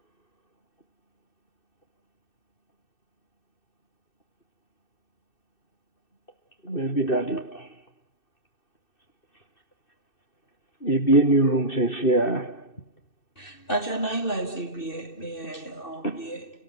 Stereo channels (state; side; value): late; right; 2.6 ms